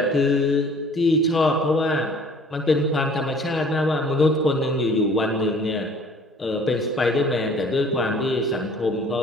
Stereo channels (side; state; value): both; normal; correlation 0.52